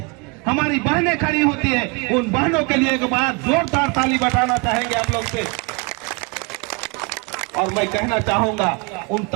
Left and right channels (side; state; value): left; quieter; 30.3 dB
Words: हमारी बहनें खड़ी होती है। उन बहनों के लिए एक बार जोरदार ताली बजाना चाहेंगे आप लोग से। और मैं कहना चाहूंगा उन